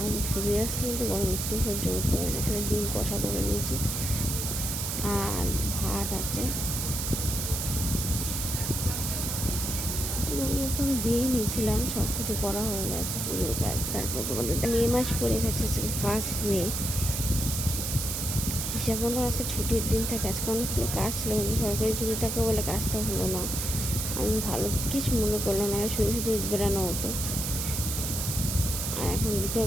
সুজে আসলে কিন্তু গরম একটু সহ্য করতে পারি না। এখানে ডিম কষা করে নিয়েছি আর ভাত আছে, পুজো দিয়েই নিয়েছিলাম। সব কিছু করা হয়ে গেছে, পুজোর কাজ। তারপর তোমাদের মে মাস পড়ে গেছে, 1 মে। হিসাব মতো আজকে ছুটির দিন থাকে। আজকে অনেকগুলো কাজ ছিল, কিন্তু সরকারি ছুটি থাকে বলে কাজটা হলো না। আমি ভালো কিছু মনে করলাম না, শুধু শুধু বেড়ানো হতো। আর এখন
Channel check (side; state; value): right; noise; hiss, 2 dB below the sound